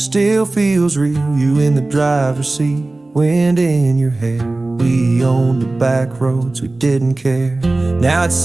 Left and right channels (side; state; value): left; quieter; 3.0 dB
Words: feels real. You in the driver's seat, wind in your hair. We owned the back roads, we didn't care. Now it